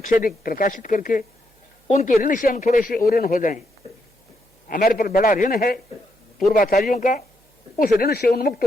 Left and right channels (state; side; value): normal; both; correlation 0.79